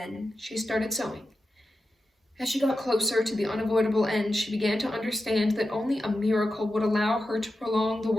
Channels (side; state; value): both; normal; correlation 0.91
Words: she started sewing. As she got closer to the unavoidable end, she began to understand that only a miracle would allow her to prolong the